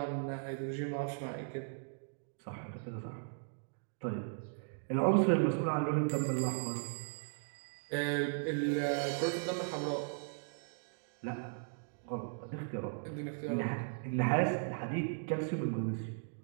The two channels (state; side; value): silent; left; digital silence